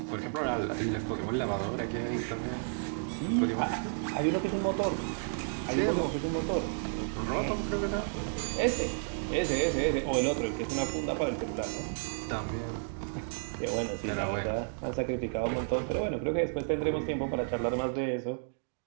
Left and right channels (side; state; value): left; silent; digital silence